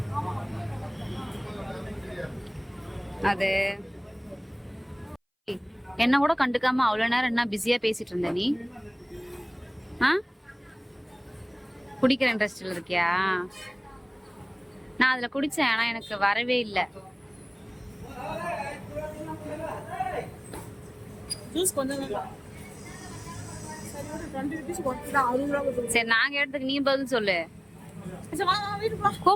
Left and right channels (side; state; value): both; identical; correlation 1.00